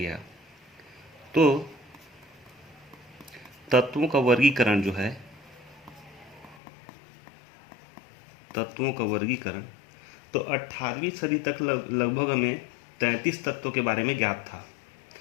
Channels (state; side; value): drops out; right; at 6.6 s